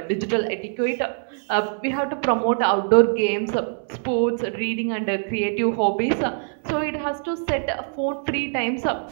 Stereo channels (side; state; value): left; silent; 63 dB below the other